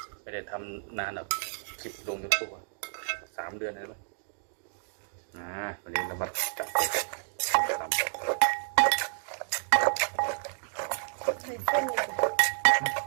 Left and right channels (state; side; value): silent; left; digital silence